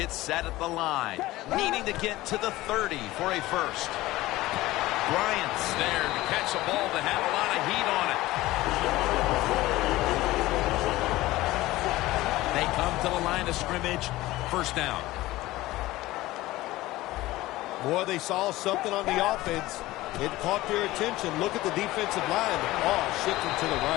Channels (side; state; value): right; quieter; 17.7 dB